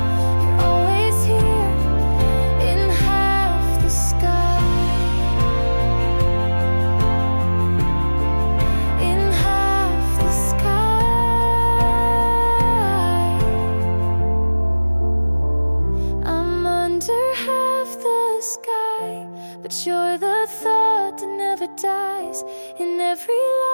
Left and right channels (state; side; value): inverted; both; correlation -1.00